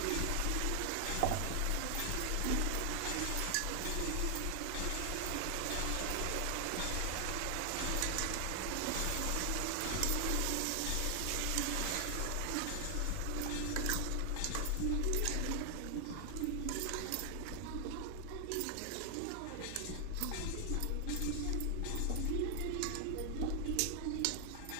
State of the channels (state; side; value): different; both; correlation 0.00